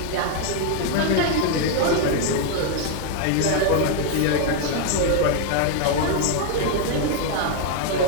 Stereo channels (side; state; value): both; different; correlation 0.00